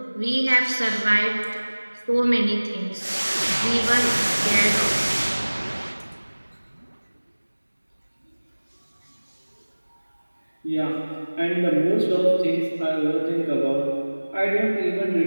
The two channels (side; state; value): both; inverted; correlation -1.00